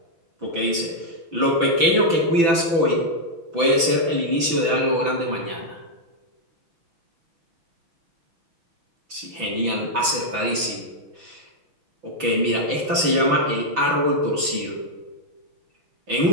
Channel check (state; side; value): late; left; 6.0 ms